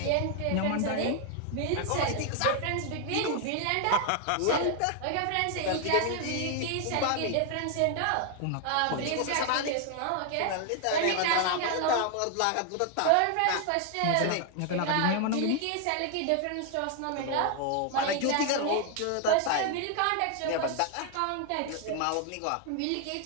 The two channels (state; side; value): different; both; correlation 0.00